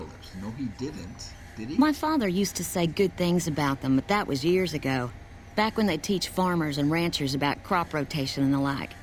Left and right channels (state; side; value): identical; both; correlation 1.00